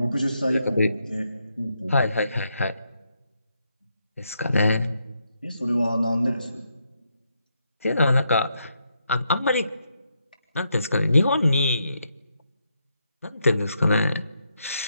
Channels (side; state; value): both; inverted; correlation -0.80